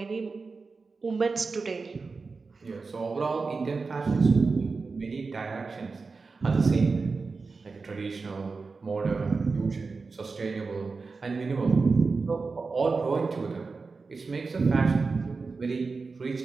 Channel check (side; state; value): left; quieter; 4.3 dB